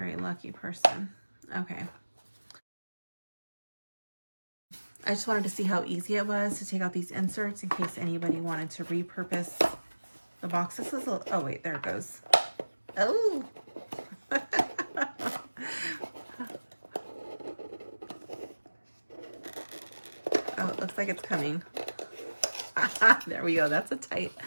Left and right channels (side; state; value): both; inverted; correlation -1.00